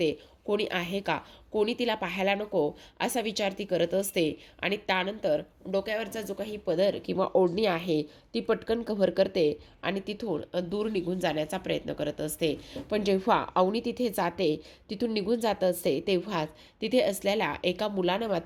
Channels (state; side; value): identical; both; correlation 1.00